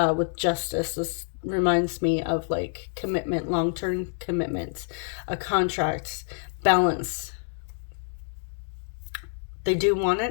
justice. This reminds me of like commitment, long-term commitment, a contract, balance. They do want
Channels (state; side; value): silent; right; digital silence